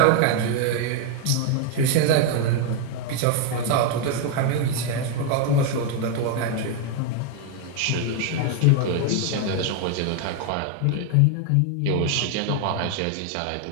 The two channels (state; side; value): different; both; correlation 0.01